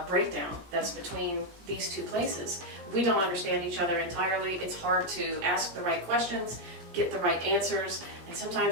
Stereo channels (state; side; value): late; left; 17 ms